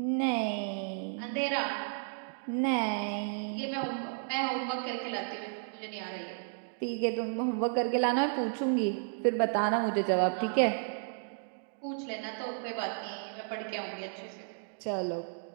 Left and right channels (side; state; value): left; silent; digital silence